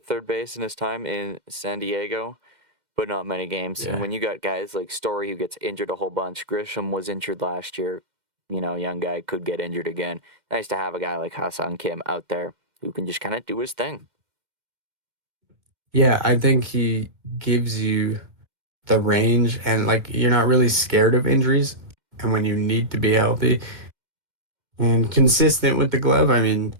third base in his time in San Diego, but not many games. Yeah. And when you got guys like Story who gets injured a whole bunch, Grisham was injured last year, young guy could get injured again. Nice to have a guy like Ha-Sung Kim out there who can just kind of do his thing. Yeah, I think he gives you the range, and you're not really scared of injuries. And when you need to be healthy and consistent with the glove,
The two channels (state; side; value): late; left; 2.1 ms